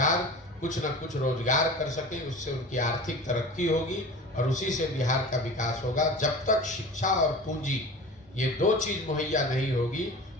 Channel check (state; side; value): normal; both; correlation 0.36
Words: कुछ न कुछ रोजगार कर सकें। उससे उनकी आर्थिक तरक्की होगी और उसी से बिहार का विकास होगा। जब तक शिक्षा और पूंजी ये 2 चीज मुहैया नहीं होगी